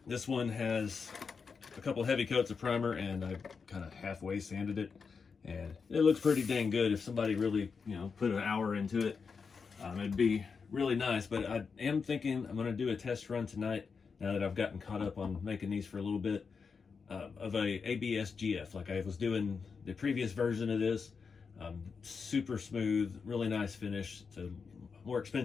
this one has a couple heavy coats of primer, and I kind of halfway sanded it, and it looks pretty dang good. If somebody really, put an hour into it, it'd be really nice. But I am thinking I'm going to do a test run tonight, now that I've gotten caught up on making these for a little bit, of a ABS GF, like I was doing the previous version of this. Super smooth, really nice finish. It's a more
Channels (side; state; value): right; quieter; 5.4 dB